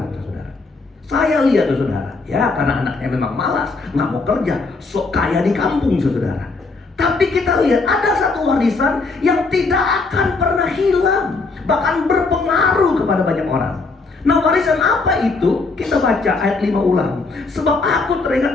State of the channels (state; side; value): quieter; right; 3.8 dB